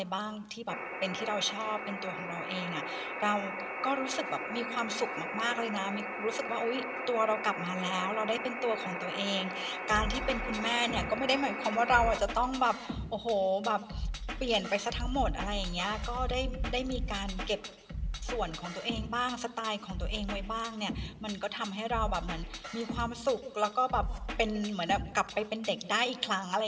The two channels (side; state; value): both; identical; correlation 1.00